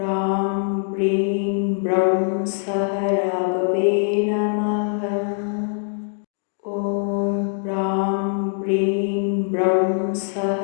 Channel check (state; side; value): silent; right; 64 dB below the other